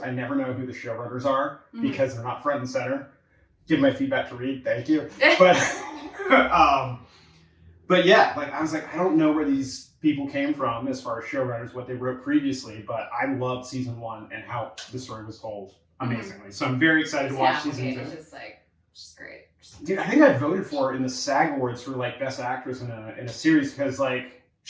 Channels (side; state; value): both; identical; correlation 1.00